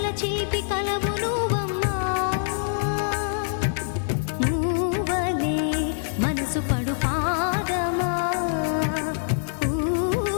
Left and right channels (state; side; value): silent; right; digital silence